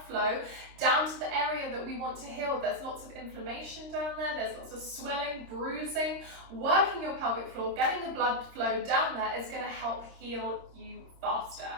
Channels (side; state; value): left; late; 26 ms